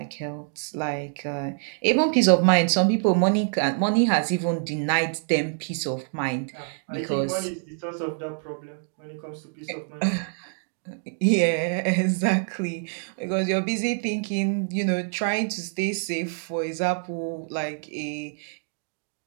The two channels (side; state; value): left; silent; 61 dB below the other